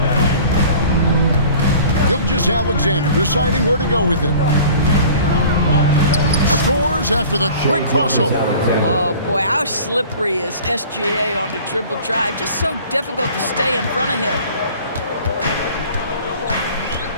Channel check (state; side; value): inverted; both; correlation -0.46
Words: Gilgeous-Alexander deciding where to go with it. Scores after the quick crossover. Oh boy, how slippery is SGA on the dribble drive. Just so difficult to stay in front of him.